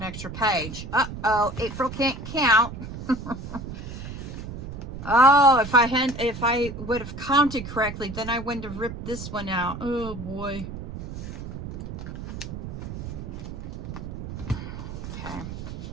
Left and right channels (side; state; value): right; noise; rumble, 8 dB below the sound